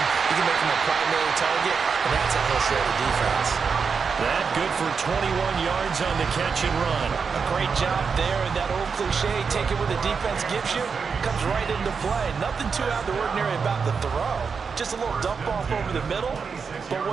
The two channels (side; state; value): left; quieter; 5.6 dB